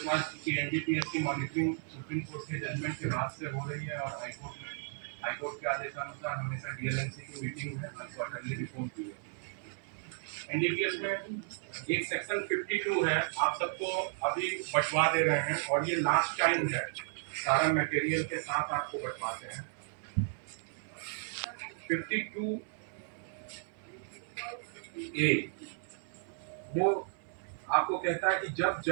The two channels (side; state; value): left; silent; 55 dB below the other